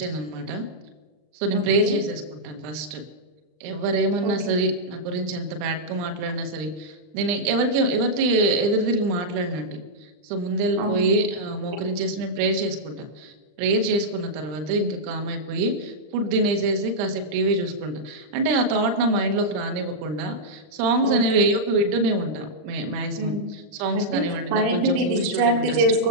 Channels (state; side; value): late; left; 39 ms